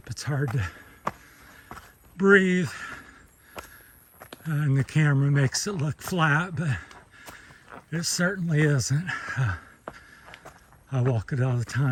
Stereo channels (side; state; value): both; identical; correlation 1.00